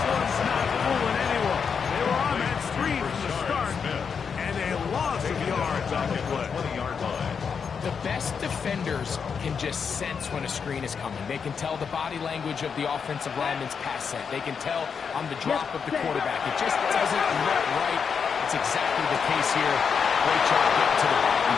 one's not fooling anyone. They were on that screen from the start, and a loss of yards on the play. 20-yard line. The best defenders can just sense when a screen is coming. They can tell the body language of the offensive lineman's pass set. They can tell on the drop of the quarterback. It just doesn't look right. It's exactly the case here. Great job getting to the ball and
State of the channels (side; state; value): right; quieter; 6.3 dB